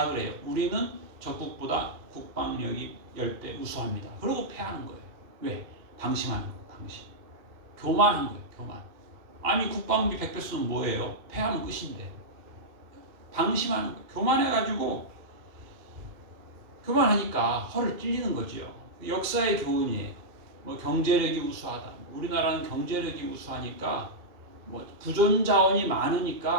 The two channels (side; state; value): left; late; 2.4 ms